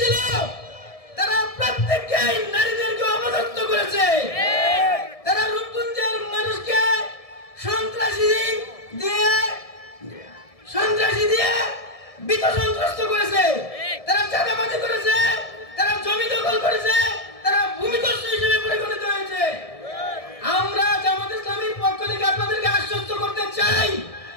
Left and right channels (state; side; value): late; right; 1.7 ms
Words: তারা প্রত্যেককেই নারীদেরকে অপদস্থ করেছে। তারা রূপগঞ্জের মানুষকে সন্ত্রাসী দিয়ে বিত সন্ত্রস্ত করেছে। তারা চাঁদাবাজি করেছে, তারা জমি দখল করেছে, তারা ভূমিদস্যু হিসেবে পরিগণিত হয়েছে। আমরা জামাত ইসলামীর পক্ষ থেকে আপনাদেরকে আশ্বস্ত করতে চাই,